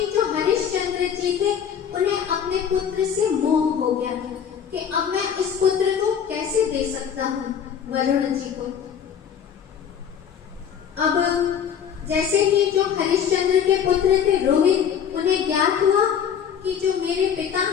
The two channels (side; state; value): right; quieter; 8.1 dB